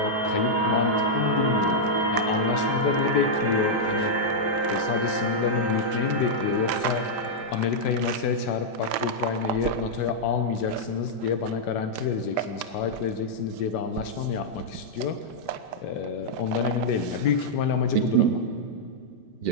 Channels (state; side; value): late; right; 5.1 ms